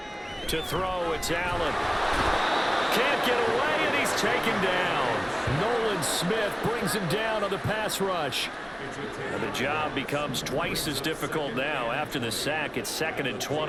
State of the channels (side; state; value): both; identical; correlation 1.00